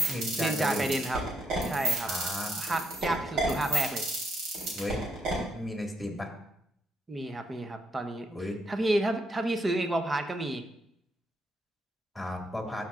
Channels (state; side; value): normal; both; correlation 0.77